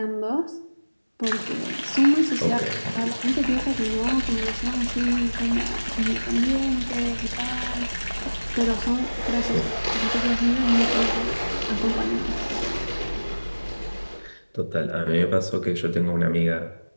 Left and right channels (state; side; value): inverted; both; correlation -1.00